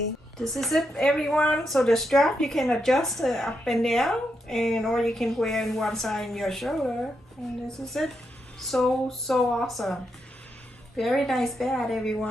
This is it, everyone. So the strap you can adjust up and down, and or you can wear in one side in your shoulder. And this is it. So awesome. Very nice bag,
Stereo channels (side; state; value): both; normal; correlation 0.83